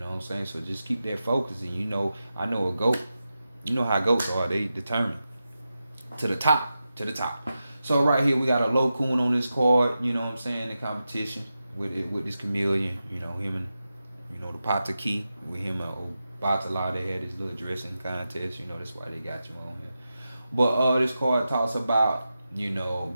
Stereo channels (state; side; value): inverted; both; correlation -0.91